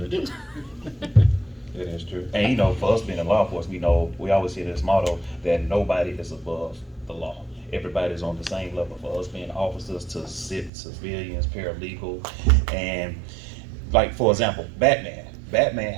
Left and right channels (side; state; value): left; drops out; at 10.7 s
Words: to do. It is true. And for us being in law enforcement, we always hear this motto that nobody is above the law. Everybody's on the same level. For us being officers to civilians, paralegal, and like, for example, Batman. Batman